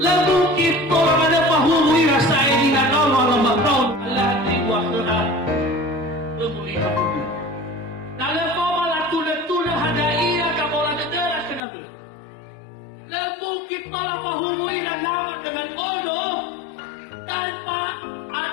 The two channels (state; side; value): drops out; right; at 11.6 s